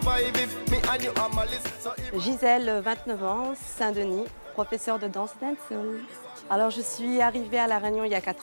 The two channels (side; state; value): both; inverted; correlation -1.00